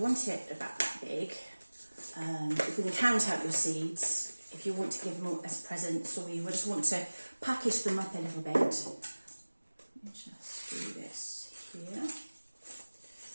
want it about that big. You can count out your seeds if you want to give them as presents, or you just want to package them up a little bit. Let me just do this here.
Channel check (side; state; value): both; inverted; correlation -1.00